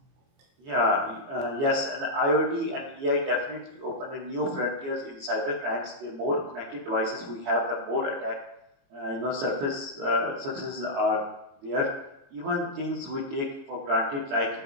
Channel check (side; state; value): left; late; 22 ms